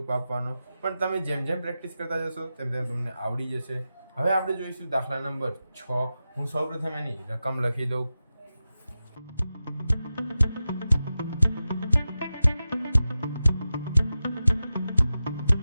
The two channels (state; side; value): inverted; both; correlation -0.93